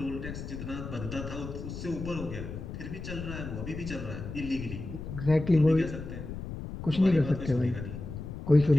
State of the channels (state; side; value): noise; left; rumble, 8 dB below the sound